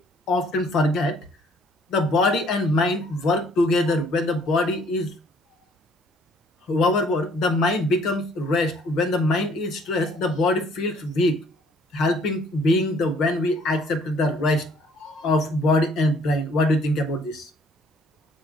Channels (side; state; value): both; normal; correlation 0.60